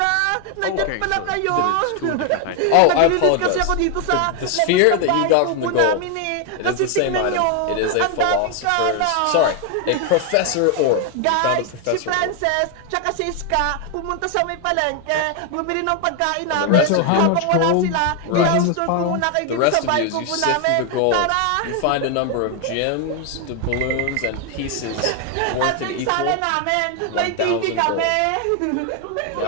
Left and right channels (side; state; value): both; different; correlation 0.01